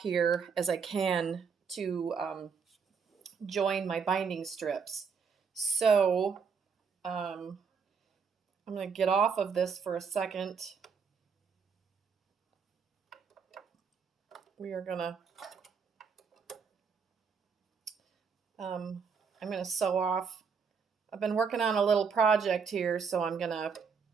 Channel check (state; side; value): quieter; left; 6.0 dB